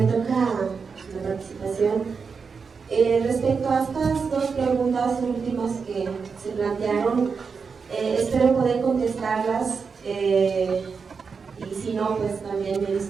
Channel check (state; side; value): quieter; left; 5.4 dB